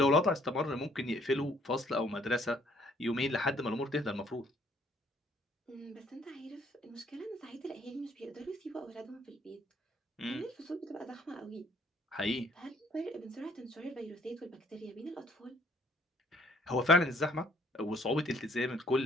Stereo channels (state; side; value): normal; both; correlation 0.62